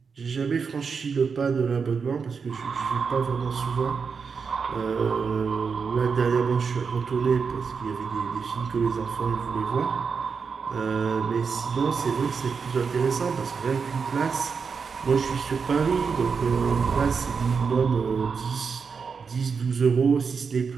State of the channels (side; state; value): left; quieter; 5.6 dB